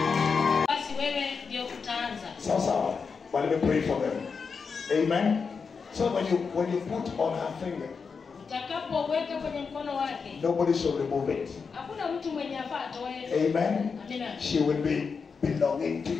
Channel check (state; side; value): quieter; right; 5.4 dB